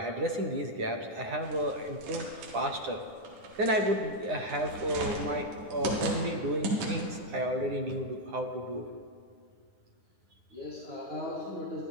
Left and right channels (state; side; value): late; left; 9.8 ms